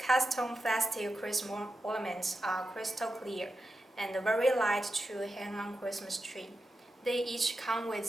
plastic Christmas ornaments are crystal clear and very light to hang on Christmas tree. They each come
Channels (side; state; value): both; normal; correlation 0.90